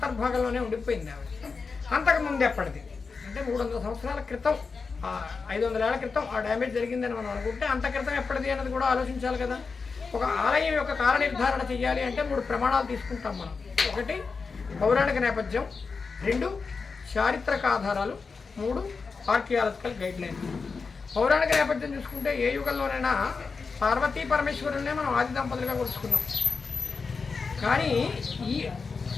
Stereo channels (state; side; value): quieter; right; 4.8 dB